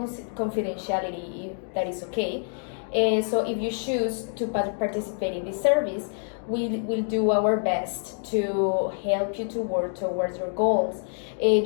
if that is okay. So if you choose to participate in this service, we'll do our best to help you to work towards your goals.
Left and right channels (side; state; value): right; silent; digital silence